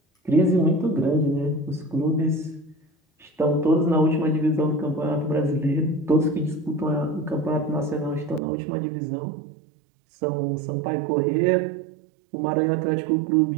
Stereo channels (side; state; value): left; drops out; at 8.4 s